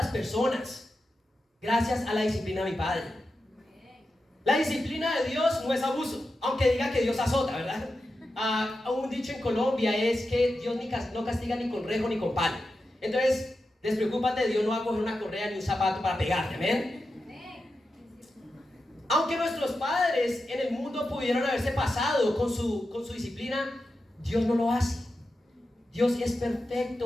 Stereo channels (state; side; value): normal; both; correlation 0.90